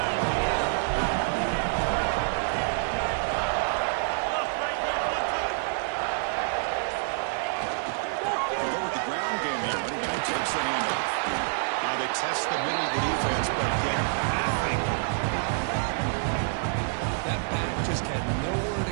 We'll go with the ground game here. Running back takes the handoff. Now they test the middle of the defense, but get nothing. That back just had nowhere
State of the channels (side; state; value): left; silent; digital silence